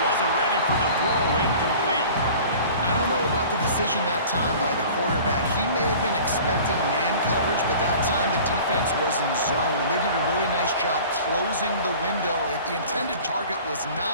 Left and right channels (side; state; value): both; inverted; correlation -0.44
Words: wasn't ready for the throw, incomplete. I don't know about the decision that time by the quarterback. He may have been expecting man coverage, but that time the defense was in zone, and they did a really nice job closing the window. The intended target was